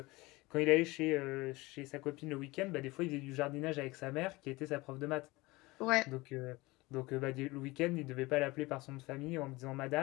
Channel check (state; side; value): quieter; right; 21.9 dB